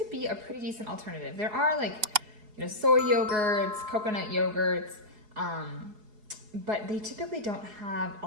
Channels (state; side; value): late; left; 2.8 ms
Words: be a pretty decent alternative. There are soy yogurts, coconut yogurts, but they typically don't have a